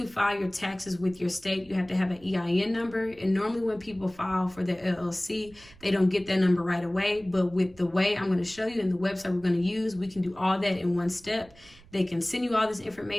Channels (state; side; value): noise; right; rumble, 24 dB below the sound